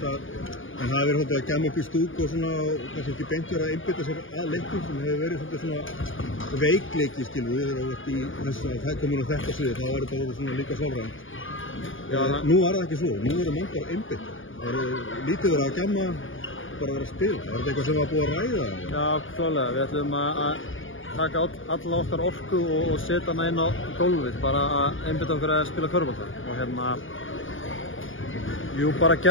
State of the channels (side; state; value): right; late; 0.58 ms